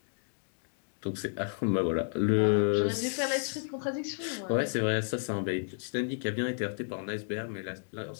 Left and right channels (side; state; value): right; silent; digital silence